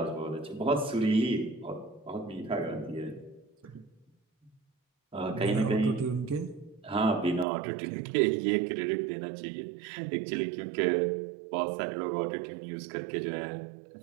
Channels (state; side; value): drops out; left; at 7.5 s